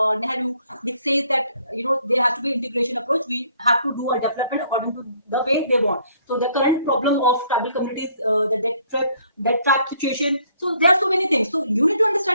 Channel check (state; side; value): inverted; both; correlation -0.64